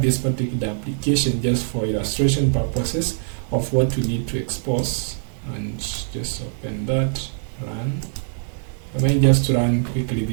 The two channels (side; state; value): left; silent; digital silence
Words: this particular application just for illustration purposes of what we need to expose, and just open that, run. I mean just to run quickly